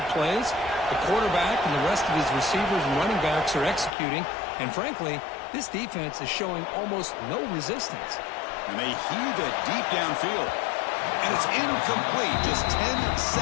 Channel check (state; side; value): drops out; right; at 3.9 s